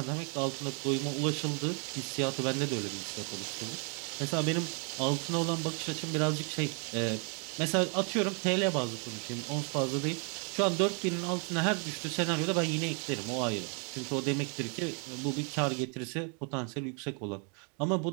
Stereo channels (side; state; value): left; quieter; 38.1 dB